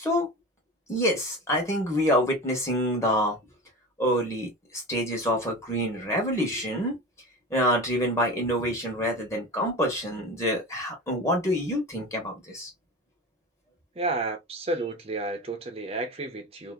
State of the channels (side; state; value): both; normal; correlation 0.29